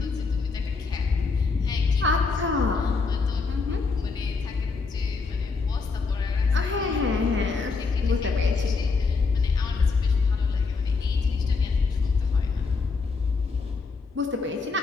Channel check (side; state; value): right; quieter; 4.5 dB